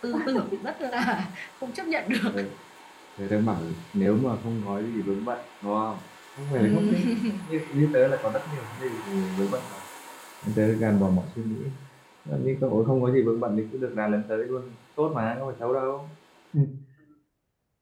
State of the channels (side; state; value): both; identical; correlation 1.00